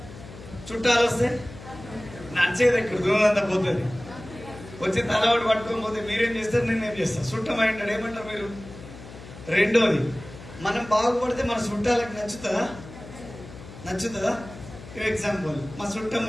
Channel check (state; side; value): noise; left; hum, 16 dB below the sound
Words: చుట్టాలు వస్తే నడిచేది ఇక్కడ దూరంతా పోతుంది. వచ్చి తలవాడు పట్టుకొని పోతే మీరేం చేస్తారు, నేనేం చేస్తాను? చుట్టం అంటాడు, ఏమంటారు మీరు? రెండోది, మనం బాగుపడితే మన చుట్టాలకు నచ్చుతుందా? ఎగ్జాంపుల్, మా చుట్టం